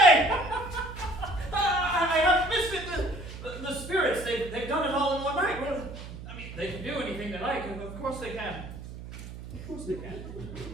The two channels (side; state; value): right; noise; hum, 12 dB below the sound